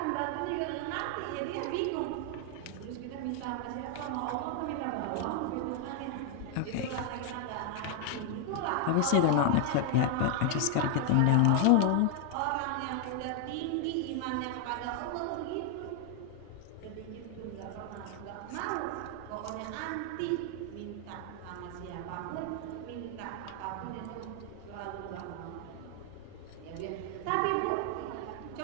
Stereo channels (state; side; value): different; both; correlation 0.00